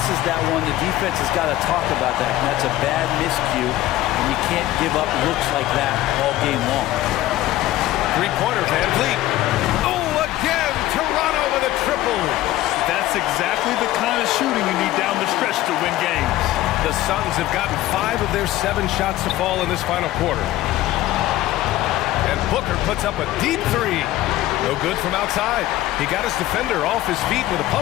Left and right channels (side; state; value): right; quieter; 15.4 dB